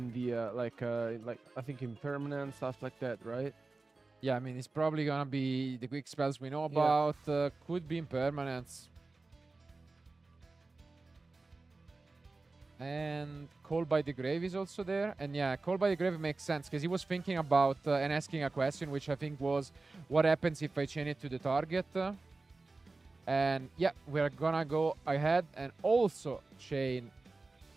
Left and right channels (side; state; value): left; quieter; 3.5 dB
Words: the like I think impermanent stuff like that, right? Yeah, I mean it's probably gonna be the quick spells we know about. Could be impermanents. And Call by the Grave is also there. And yeah, Call by the Grave makes sense because he was thinking about and asking a question, which I think was, what happens if I chain it to the target? And yeah, we're gonna go ahead and also chain